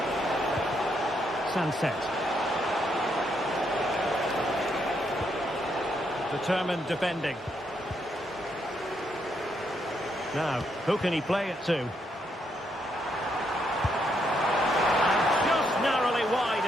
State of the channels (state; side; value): normal; both; correlation 0.77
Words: Sunset. Determined defending. Now, who can he play it to? And just narrowly wide